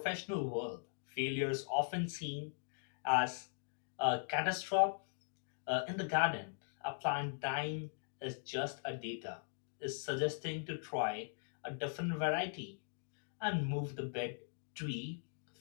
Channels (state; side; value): silent; right; digital silence